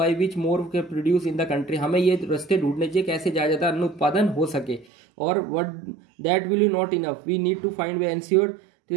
which more के प्रोड्यूस इन द कंट्री, हमें ये रास्ते ढूंढने चाहिए कैसे ज्यादा अन्न उत्पादन हो सके। और what that will you not enough, we need to find way ensure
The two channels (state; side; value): drops out; left; at 4.9 s